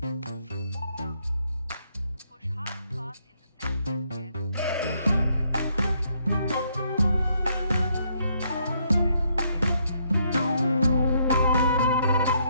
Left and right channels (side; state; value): both; inverted; correlation -0.73